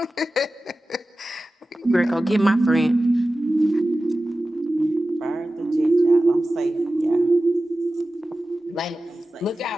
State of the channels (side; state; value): both; normal; correlation 0.95